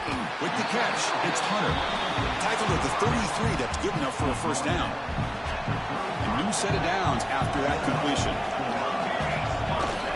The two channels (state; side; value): identical; both; correlation 1.00